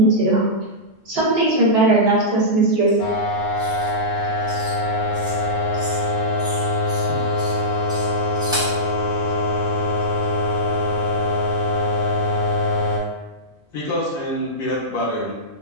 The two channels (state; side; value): normal; both; correlation -0.15